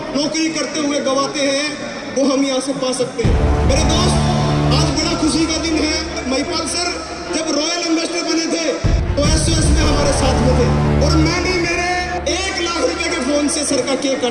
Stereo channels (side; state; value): both; identical; correlation 1.00